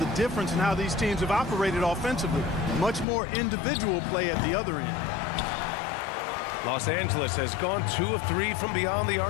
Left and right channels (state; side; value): drops out; right; at 3.1 s